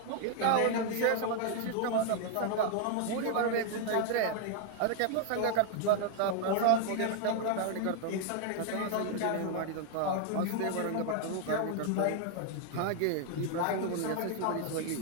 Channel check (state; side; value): different; both; correlation 0.00